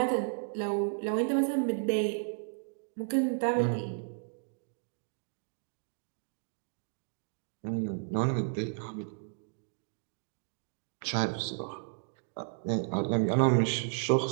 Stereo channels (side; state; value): left; silent; digital silence